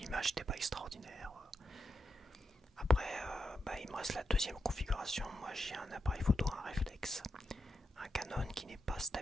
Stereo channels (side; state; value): both; normal; correlation 0.87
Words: n'était pas extraordinaire. Après bah, il me reste la deuxième configuration. Moi j'ai un appareil photo, un réflexe, un Canon qui n'est pas